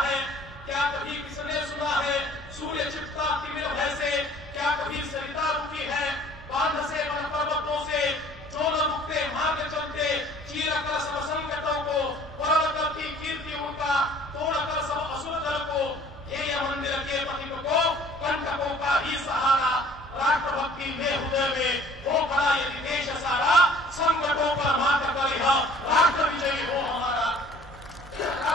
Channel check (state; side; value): normal; both; correlation 0.52